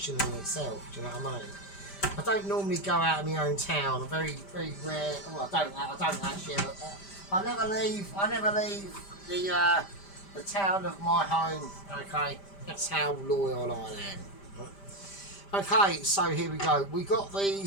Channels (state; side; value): late; right; 5.1 ms